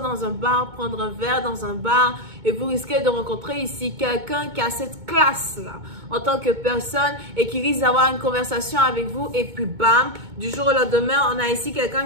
dans un bar, prendre un verre dans un bar et vous risquez de rencontrer ici quelqu'un qui a cette classe-là en tant que personne et qui risque d'avoir une conversation avec vous et puis bam, du jour au lendemain, on a ici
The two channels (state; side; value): late; left; 2.2 ms